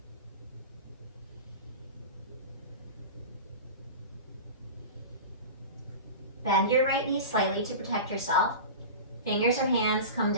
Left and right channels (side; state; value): both; inverted; correlation -0.31